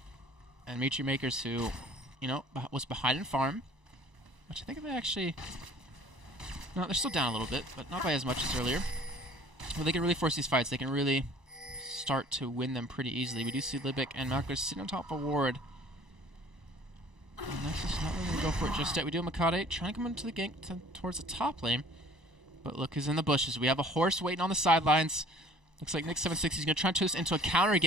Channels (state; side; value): late; left; 1.0 ms